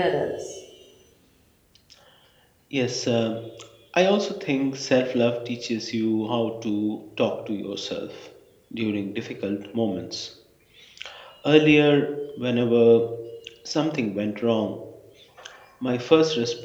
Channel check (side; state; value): both; identical; correlation 1.00